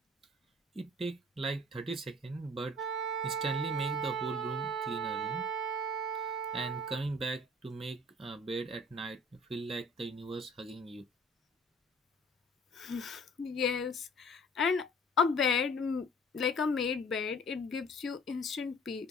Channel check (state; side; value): normal; both; correlation 0.49